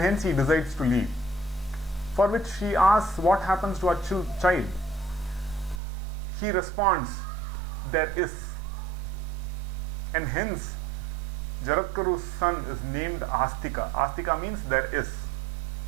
he decides to leave. For which she asks what happens to our child. He responds, there is. And hence Jaratkaru's son is named Astika. Astika means there is.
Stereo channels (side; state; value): left; drops out; at 5.8 s